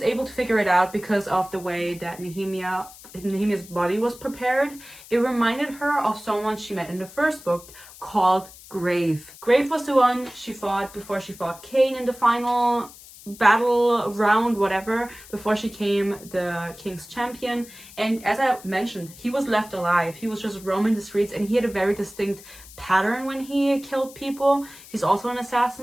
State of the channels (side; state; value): left; noise; hiss, 19 dB below the sound